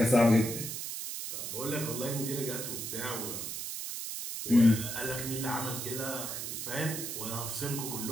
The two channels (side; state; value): right; noise; hiss, 5 dB below the sound